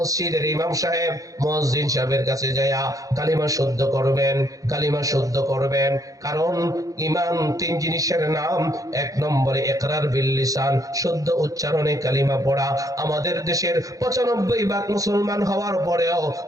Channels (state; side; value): late; left; 0.17 ms